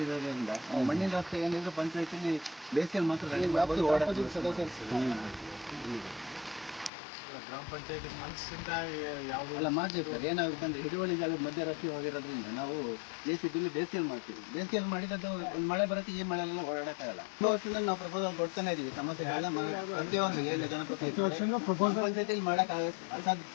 ಮಣ್ಣಿನ ರಸ್ತೆ ಏನಿದ್ರು ಪಂಚಾಯತಿಲಿ ಬೇಸಿಗೆಯಲ್ಲಿ ಮಾತ್ರ ಗ್ರಾಮ ಪಂಚಾಯತಿ ಮನಸ್ಸಿಂದ ಯಾವುದೆಲ್ಲ ಮಾಡ್ತೀವಿ ಸರ್. ಏನಾಗುತ್ತೆ ಅಂದರೆ ಹಿಡುವಳಿ ಜಾಗದ ಮಧ್ಯ ರಸ್ತೆ ಹೋಗಿರೋದ್ರಿಂದ ನಾವು ಬೇಸಿಗೆಯಲ್ಲಿ ಬೇಸಿಗೆಯಲ್ಲಿ ಮಾಡ್ತೀವಿ. ಬೇಸಿಗೆಯಲ್ಲಿ ಮಾಡಿದ್ದು ಒಂದು ಮಳೆ ಬರುತ್ತೆ, ಈ ಮಳೆಯೆಲ್ಲ ಓಡಾಡೋಕ್ಕಾಗಲ್ಲ. ವರ್ಷದಲ್ಲಿ ನಾವು ಪ್ರಪೋಸಲ್ ಕೊಡ್ತಾನೆ ಇದೀವಿ. ಸಮಸ್ಯೆಗಳೆಲ್ಲ ಪ್ರತಿಯೊಂದು ಏನು ಜನಪ್ರತಿನಿಧಿ ಪಂಚಾಯತಿಯಲ್ಲಿ ಮಾಡೋಕ್ಕಾಗ ಅಸಾಧ್ಯ.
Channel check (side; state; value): right; drops out; at 6.9 s